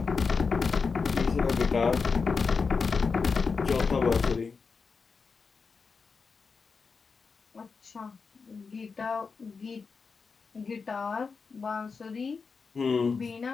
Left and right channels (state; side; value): quieter; right; 5.0 dB